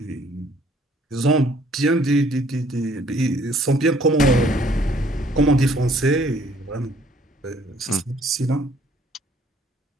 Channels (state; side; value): normal; both; correlation 0.61